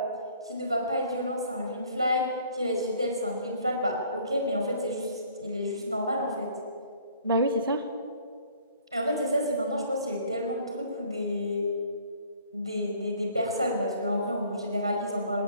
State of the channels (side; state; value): both; inverted; correlation -0.56